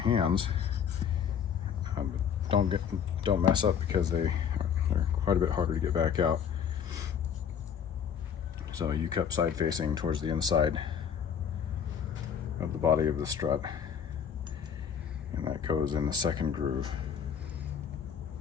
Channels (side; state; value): right; quieter; 7.8 dB